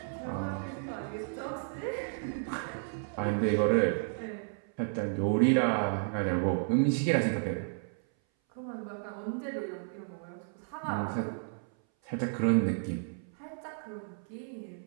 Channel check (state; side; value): silent; left; 56 dB below the other